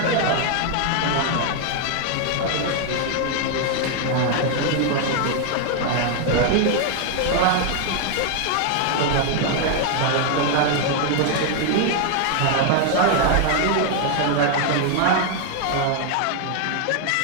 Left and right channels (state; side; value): different; both; correlation 0.00